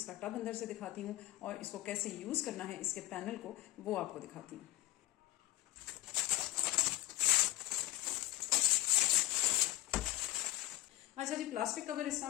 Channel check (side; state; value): right; quieter; 17.4 dB